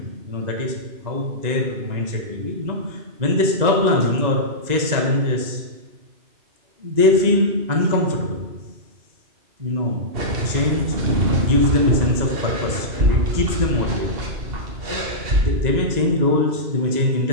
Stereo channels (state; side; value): late; left; 2.0 ms